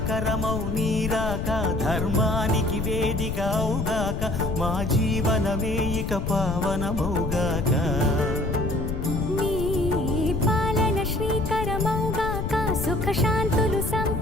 మంగళకరమౌ నీరాక ధర్మానికి వేదిక అవుగాక మా జీవనమే ఇక పావనమౌగాక నీ పాలన శ్రీకరమౌగాక సుఖ శాంతులు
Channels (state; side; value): noise; left; rumble, 2 dB below the sound